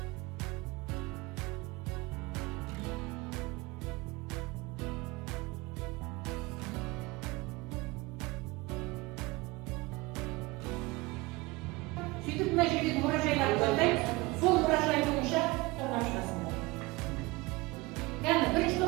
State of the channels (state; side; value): quieter; left; 22.6 dB